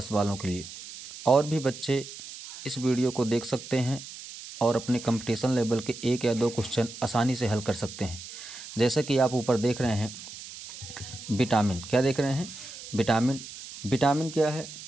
वालों के लिए। और भी बच्चे इस वीडियो को देख सकते हैं और अपने कंपटीशन लेवल के 1 या 2 क्वेश्चन आसानी से हल कर सकते हैं। जैसा कि आप ऊपर देख रहे हैं, विटामिन क्या देख रहे हैं? विटामिन क्या है?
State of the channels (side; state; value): right; noise; hiss, 13 dB below the sound